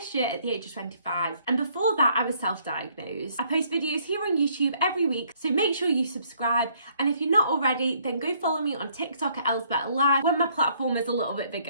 year at the age of 25, and before that I was self-diagnosed. I post videos here on YouTube every week, so make sure you subscribe, and if you're not already, then go follow me on TikTok at Elle's Better Life when my platform is a little bit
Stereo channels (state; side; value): inverted; both; correlation -0.65